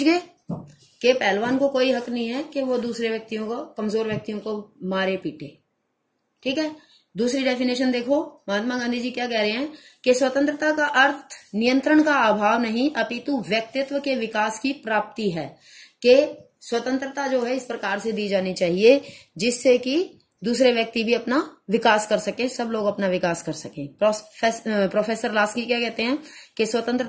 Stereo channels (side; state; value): both; identical; correlation 1.00